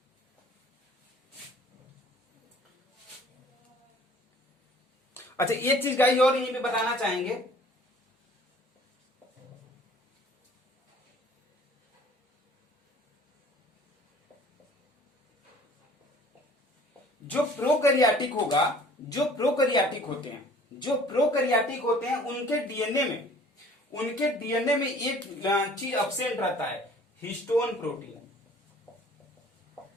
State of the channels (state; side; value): normal; both; correlation 0.51